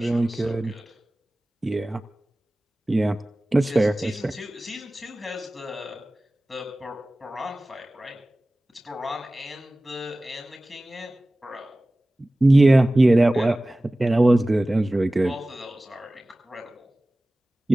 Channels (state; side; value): normal; both; correlation 0.98